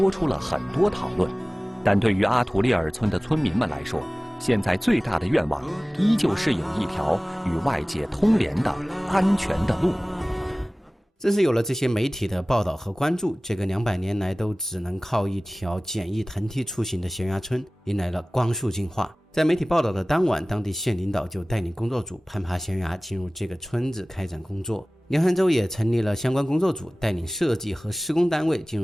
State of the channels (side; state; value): both; normal; correlation 0.98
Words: 出了很多讨论。但对于阿图利尔村的村民们来说，现在最大的愿望依旧是有一条与外界通联的安全的路。正是有了这些媒体的报道和关注，这个200年来都只能靠一条简易藤梯出行的悬崖村迎来了光速进化。在媒体报道的当晚，当地县领导就带领工作组攀爬悬崖进入这个村子开展工作。凉山州也成立了相关工作组，带领设计和施工单位进